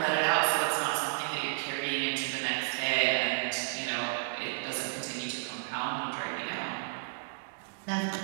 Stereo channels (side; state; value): left; silent; digital silence